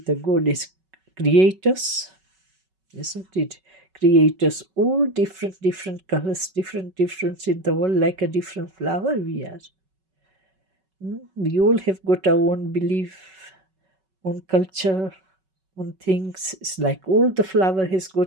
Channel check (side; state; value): left; late; 5.3 ms